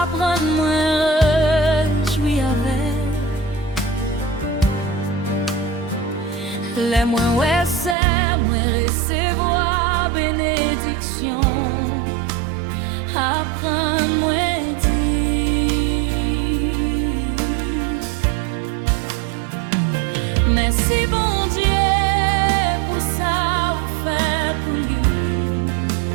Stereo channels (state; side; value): drops out; left; at 8.0 s